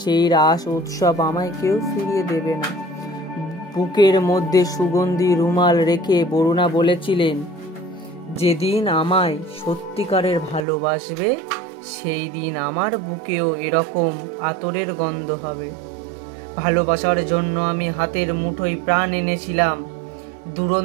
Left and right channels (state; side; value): drops out; left; at 10.7 s